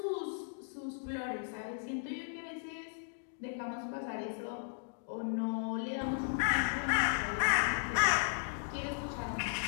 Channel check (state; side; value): silent; right; digital silence